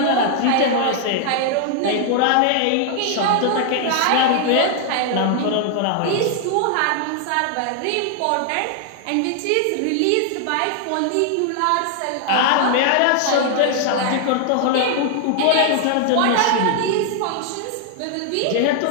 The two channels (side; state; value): both; different; correlation 0.00